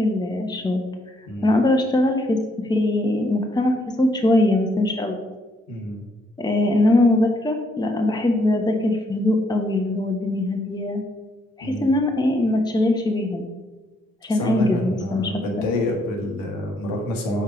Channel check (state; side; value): normal; both; correlation 0.72